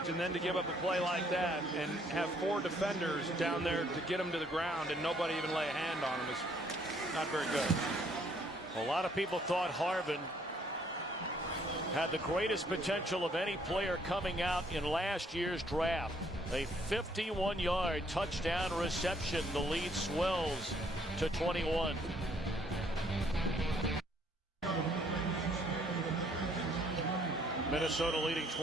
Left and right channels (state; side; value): normal; both; correlation 0.66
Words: and then to give up a play like that and have four defenders down there to get him to the ground and nobody even lay a hand on him is not very good. A lot of people thought Harvin had the greatest potential of any player coming out in last year's draft. A 51-yard touchdown reception. The lead swells to 21. Minnesota leading